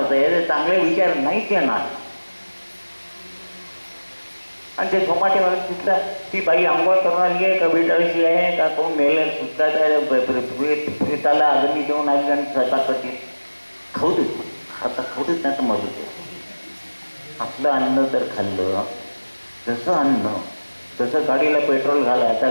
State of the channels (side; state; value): both; inverted; correlation -1.00